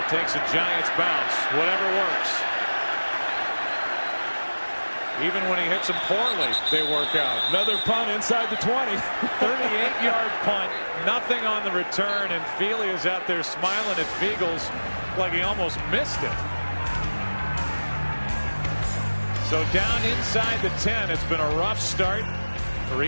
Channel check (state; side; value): inverted; both; correlation -1.00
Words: takes a Giants bounce. Whatever works. Even when he hits them poorly, they work out. Another punt inside the 20. 38-yard punt. Nothing on the return, and Feely is out there smiling at Fiegels like he almost missed it. So down inside the 10. It's been a rough start for